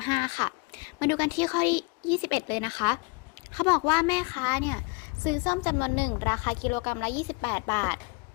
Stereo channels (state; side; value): quieter; right; 29.2 dB